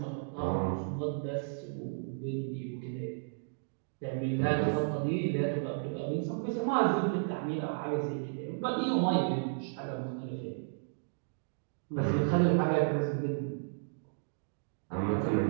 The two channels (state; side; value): silent; left; digital silence